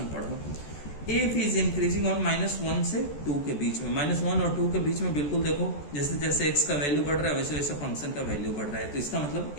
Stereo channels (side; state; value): right; late; 14 ms